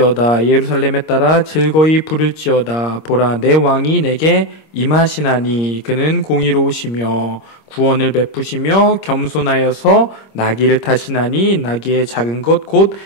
예루살렘에 따라 즐거이 부를지어다. 보라, 내 왕이 내게 임하시나니 그는 공의로우시며 구원을 베푸시며 겸손하여서 나귀를 타시나니 나귀의 작은 것 곧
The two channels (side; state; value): right; late; 26 ms